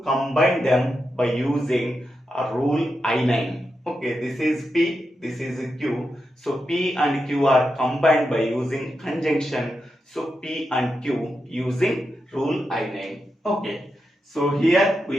combine them by using a rule I9. Okay, this is P, this is Q. So P and Q are combined by using conjunction. So P and Q using rule I9. Okay. So here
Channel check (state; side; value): normal; both; correlation 0.87